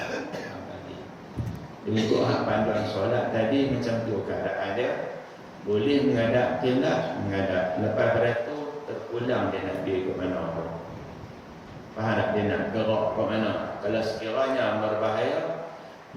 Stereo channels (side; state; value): both; identical; correlation 1.00